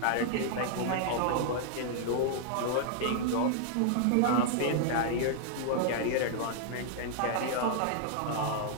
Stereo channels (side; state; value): both; different; correlation -0.01